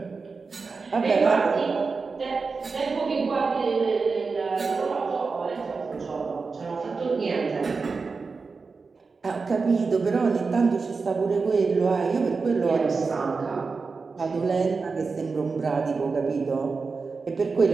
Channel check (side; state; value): left; quieter; 4.5 dB